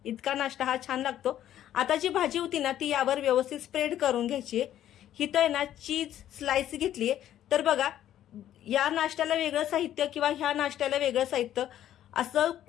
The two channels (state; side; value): quieter; right; 11.7 dB